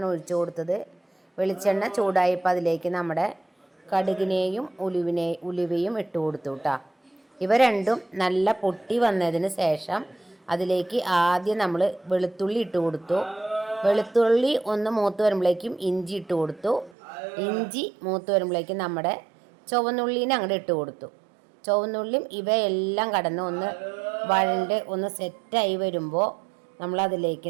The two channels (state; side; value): drops out; left; at 16.9 s